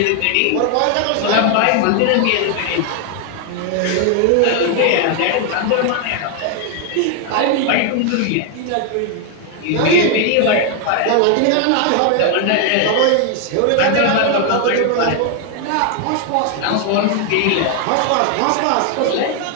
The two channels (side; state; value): both; different; correlation 0.00